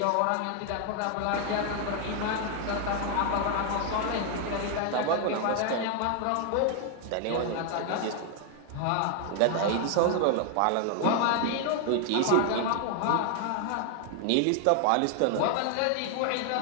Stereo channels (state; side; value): different; both; correlation 0.00